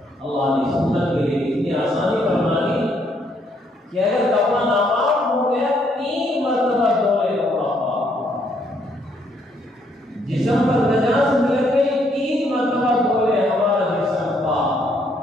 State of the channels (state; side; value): normal; both; correlation 0.71